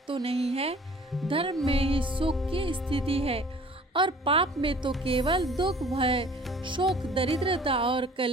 तो नहीं है। धर्म में ही सुख की स्थिति है और पाप में तो केवल दुख, भय, शोक, दरिद्रता और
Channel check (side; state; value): both; normal; correlation 0.50